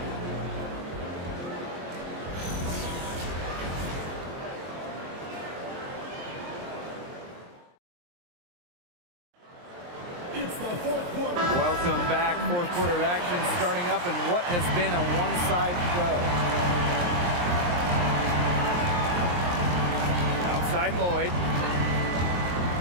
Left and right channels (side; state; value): left; late; 23 ms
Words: It's the 4th quarter. Welcome back. Fourth quarter of action starting up in what has been a one-side show. Outside Lloyd.